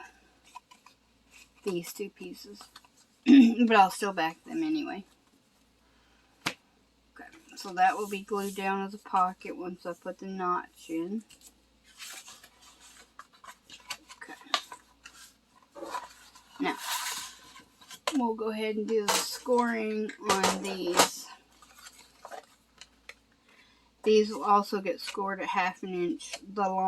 these two pieces. But I'll still back them anyway. Okay, so that will be glued down as a pocket once I put the notch in. Okay. Now, we'll go ahead and do the scoring on these. These will also get scored at 1/2 inch the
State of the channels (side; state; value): both; identical; correlation 1.00